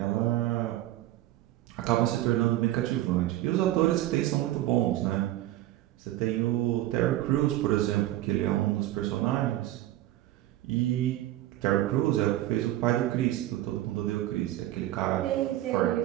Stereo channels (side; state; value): left; quieter; 14.8 dB